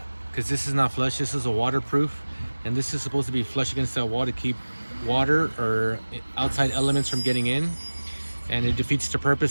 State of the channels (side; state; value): both; inverted; correlation -1.00